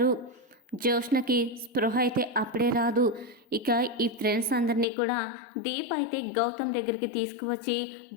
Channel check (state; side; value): drops out; right; at 4.9 s